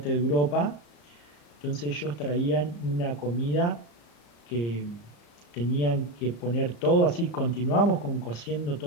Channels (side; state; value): right; late; 34 ms